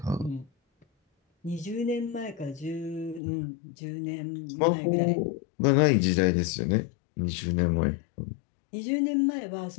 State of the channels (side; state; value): right; drops out; at 3.2 s